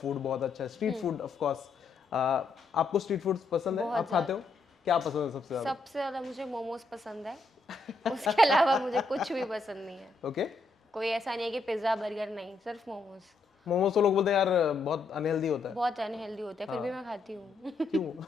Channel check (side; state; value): right; quieter; 3.8 dB